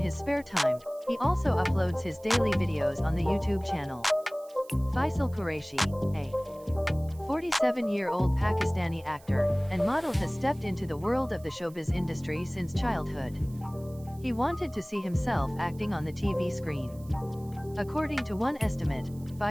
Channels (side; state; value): right; noise; hiss, 25 dB below the sound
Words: spare time, he also uploads his daily videos on the YouTube channel. Faisal Qureshi, a 47-year-old Pakistani actor and model, has stepped into the world of the showbiz industry since childhood. He wanted to see himself acting on the TV screen. According to one estimate,